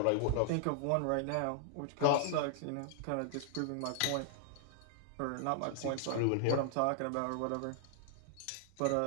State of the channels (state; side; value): different; both; correlation 0.00